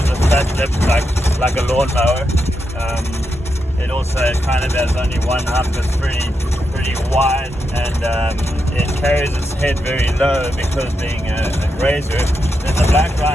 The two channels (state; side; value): normal; both; correlation 0.85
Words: a flat lip like a lawnmower. It also kind of has only one hump that's pretty wide, and it carries its head very low because being a grazer. Then the black